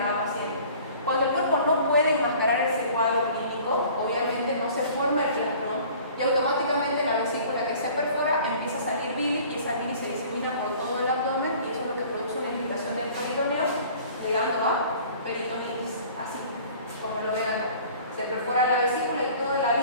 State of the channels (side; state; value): both; inverted; correlation -0.49